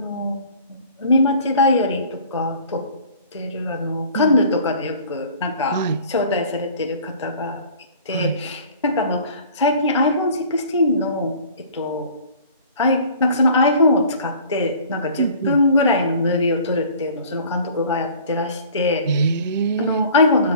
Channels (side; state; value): both; inverted; correlation -0.48